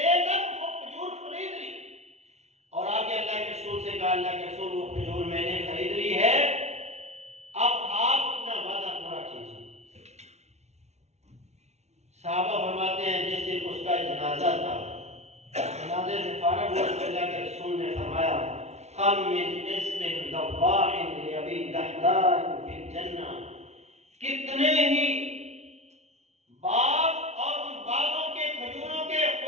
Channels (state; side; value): late; left; 0.32 ms